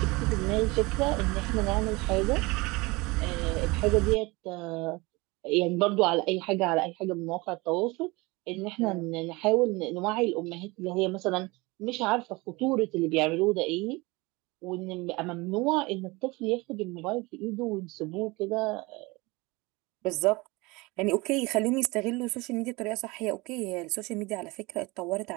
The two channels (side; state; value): left; quieter; 23.9 dB